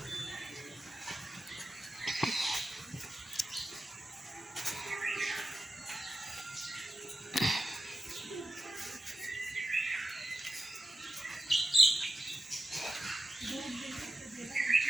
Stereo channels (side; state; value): both; normal; correlation 0.90